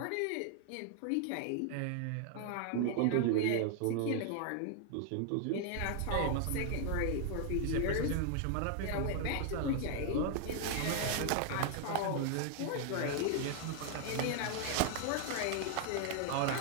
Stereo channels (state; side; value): different; both; correlation 0.00